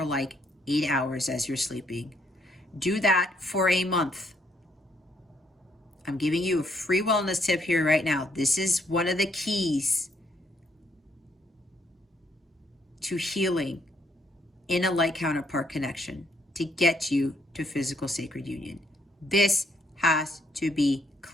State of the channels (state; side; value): normal; both; correlation 0.71